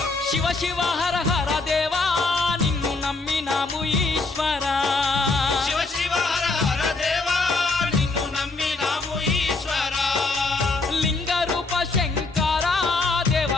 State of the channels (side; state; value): right; quieter; 3.7 dB